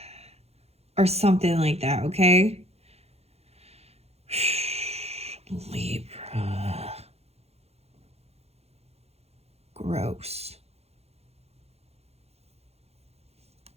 Or something like that, okay? Libra. Gross.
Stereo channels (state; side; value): late; left; 0.30 ms